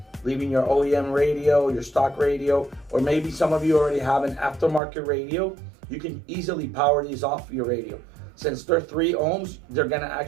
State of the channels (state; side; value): drops out; left; at 4.8 s